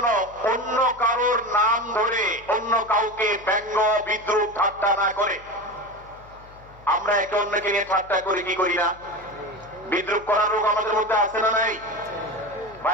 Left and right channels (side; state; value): left; noise; hum, 23 dB below the sound